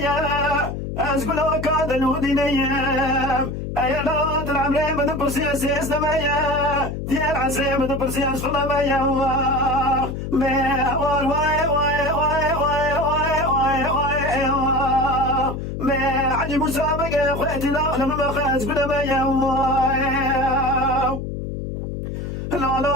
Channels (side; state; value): left; noise; hum, 5 dB below the sound